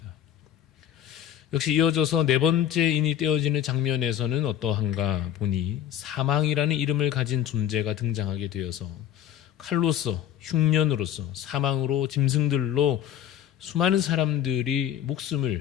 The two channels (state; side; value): quieter; right; 10.8 dB